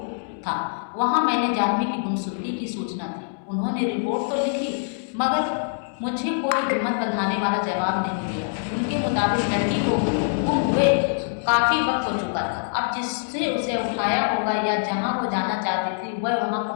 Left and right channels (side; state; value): right; silent; 62 dB below the other